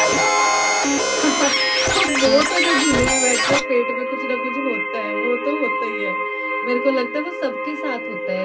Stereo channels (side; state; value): both; identical; correlation 1.00